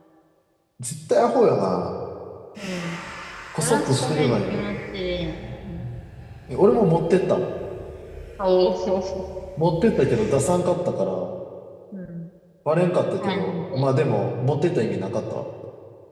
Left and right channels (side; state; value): both; identical; correlation 1.00